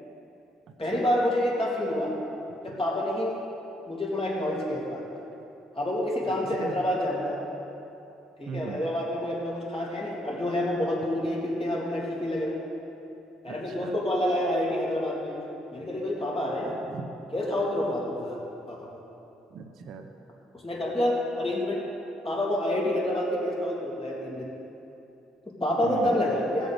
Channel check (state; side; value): normal; both; correlation 0.71